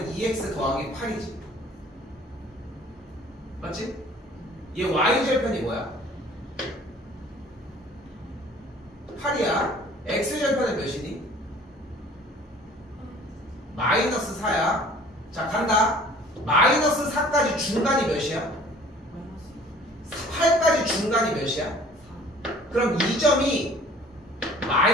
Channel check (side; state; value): both; normal; correlation 0.51